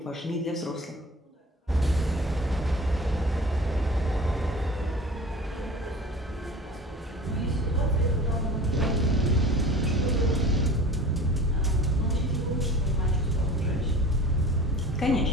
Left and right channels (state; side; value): normal; both; correlation 0.40